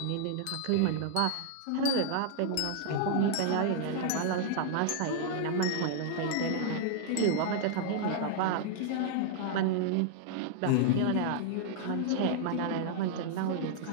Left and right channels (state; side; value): different; both; correlation -0.01